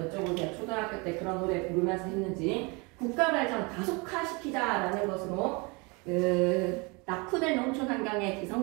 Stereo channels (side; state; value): left; quieter; 28.9 dB